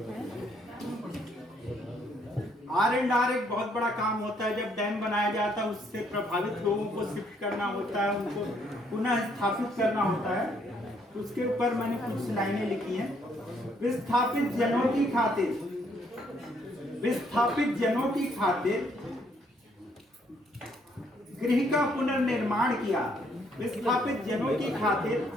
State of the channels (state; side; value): normal; both; correlation 0.69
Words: R&R एक बहुत बड़ा काम होता है। जब डैम बनाया जाता है उससे प्रभावित लोगों को शिफ्ट करना होता है, उनको पुनः स्थापित करना होता है। उसके ऊपर मैंने कुछ लाइनें लिखी हैं। विस्थापित जनों की खातिर गृह का पुनर्निर्माण किया। विस्थापित जनों की खातिर